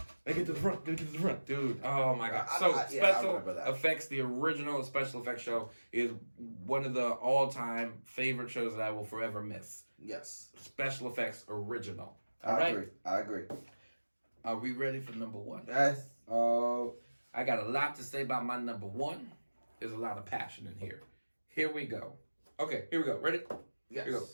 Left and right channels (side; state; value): both; inverted; correlation -1.00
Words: Get to the front, dude. Oh my god! I So remember special that. effects, the original special effects show is one of the all-time favorite shows that I will forever miss. Yes. Special effects original. I agree. Are we ready for number one? Yes. Oh, I got a lot to say about my number one. There's a lot of passion in here. Here we go. Okay, here we go. Ready? Yes. Here we go.